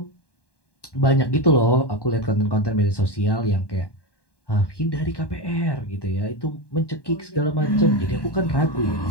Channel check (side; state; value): right; late; 1.1 ms